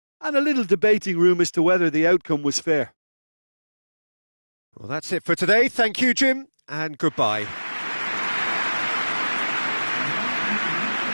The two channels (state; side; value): inverted; both; correlation -1.00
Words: and a little debating room as to whether the outcome was fair. Well, that's it for today. Thank you, Jim, and goodbye.